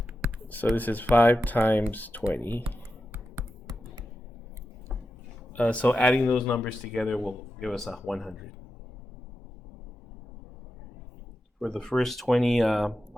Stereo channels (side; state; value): both; normal; correlation 0.90